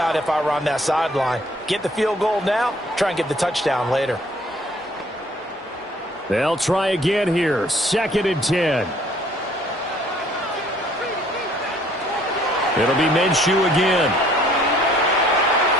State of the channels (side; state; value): both; normal; correlation 0.59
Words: if I were on that sideline. Get the field goal now, try and get the touchdown later. They'll try again here. 2nd and 10. It'll be Minshew again.